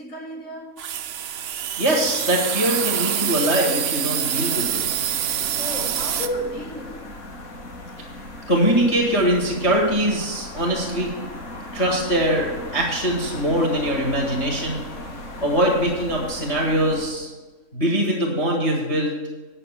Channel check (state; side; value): late; right; 3.6 ms